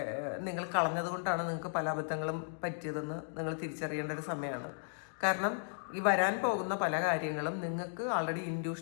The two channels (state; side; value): silent; right; digital silence